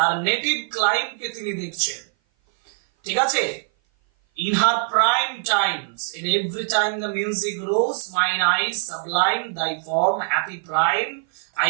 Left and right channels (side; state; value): left; silent; 57 dB below the other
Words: নেটিভ ক্লাইম কে তিনি দেখছেন, ঠিক আছে। In her prime times, in every time the music rose, mine eyes sublime thy form, happy prime,